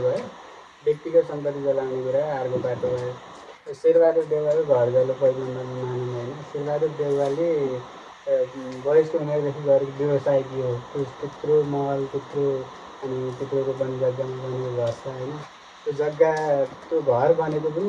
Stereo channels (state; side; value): identical; both; correlation 1.00